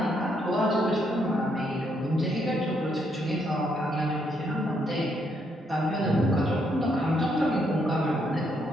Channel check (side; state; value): both; normal; correlation 0.74